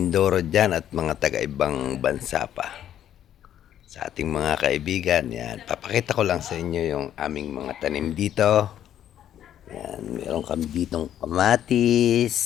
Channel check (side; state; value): right; quieter; 10.8 dB